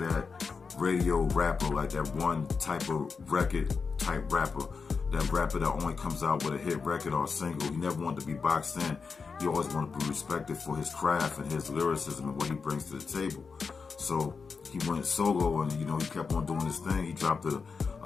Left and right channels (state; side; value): quieter; right; 5.1 dB